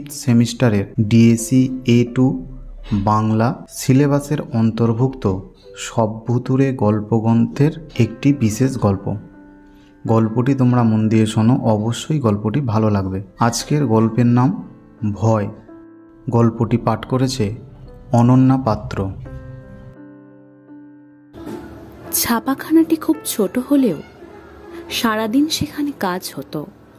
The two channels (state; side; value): identical; both; correlation 1.00